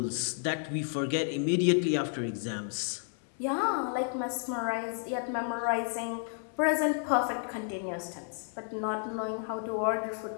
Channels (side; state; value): right; silent; 57 dB below the other